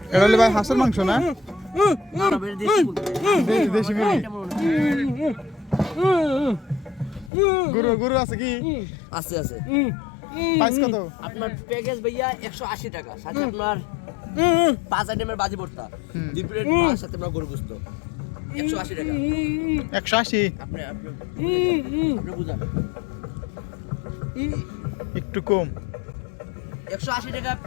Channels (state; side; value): drops out; right; at 7.3 s